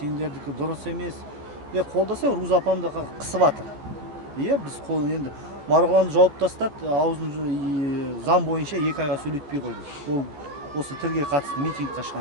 дұрыс емес. Қолдаса, Руза апамды қысып жатыр. Біз енді Марғұланды жауып тастады, аузын заң бойынша 2 айға сөйлетпей қойды. Ол осы тілге қатысты митингқа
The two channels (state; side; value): late; left; 14 ms